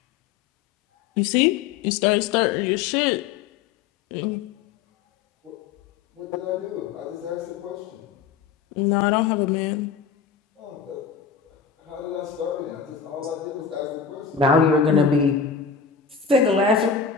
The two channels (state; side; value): quieter; right; 6.3 dB